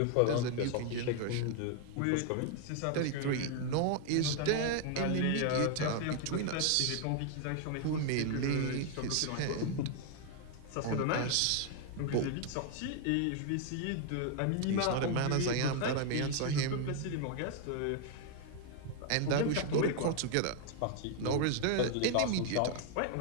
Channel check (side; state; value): both; different; correlation 0.00